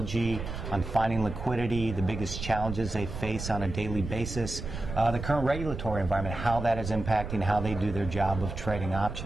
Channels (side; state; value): right; noise; rumble, 7 dB below the sound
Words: on finding liquidity, the biggest challenges they face on a daily basis, the current regulatory environment, how that is impacting how they do their job of trading